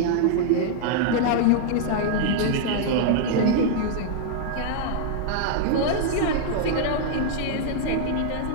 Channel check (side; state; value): both; different; correlation 0.00